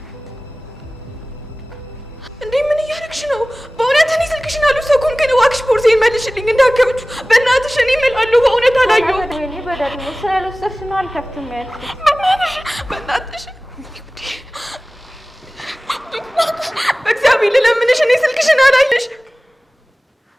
እንዴ? ምን እያደረግሽ ነው? በእውነት እኔ ስልክሽን አልወሰድኩም፣ ግን እባክሽ ቦርሳዬን መልሽልኝ እንዳትከብቹ። በእናትሽ እኔ እምላለሁ በእውነት አላየሁም። እኔ በደግሞ ስላልወሰድሽ ነው አልከፍትም ያልኩት። በእናትሽ በእግዚአብሔር ልለምንሽ፣ እኔ ስልክሽን አላየሽ።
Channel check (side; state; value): both; normal; correlation 0.98